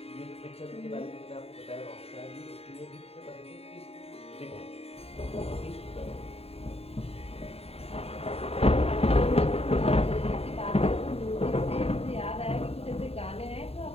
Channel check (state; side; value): late; right; 0.29 ms